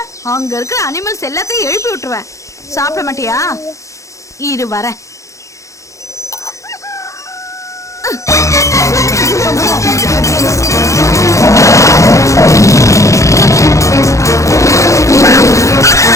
அங்க இருக்கிற அனிமல்ஸ் எல்லாத்தையும் எழுப்பி விட்டுருவேன். சாப்பிட மாட்டியா? இரு வரேன்.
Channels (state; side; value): late; right; 0.15 ms